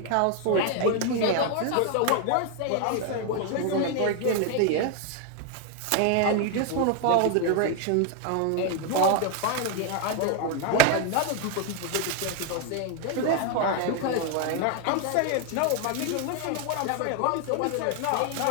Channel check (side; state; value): both; different; correlation 0.01